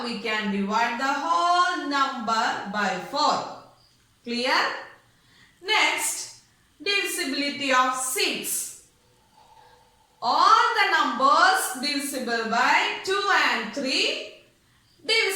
we can divide the whole number by 4. Clear? Next, divisibility of 6. All the numbers divisible by 2 and 3,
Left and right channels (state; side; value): identical; both; correlation 1.00